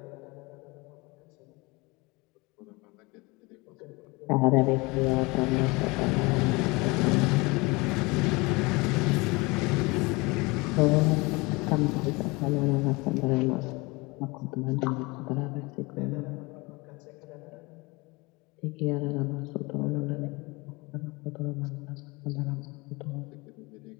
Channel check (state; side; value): quieter; right; 25.1 dB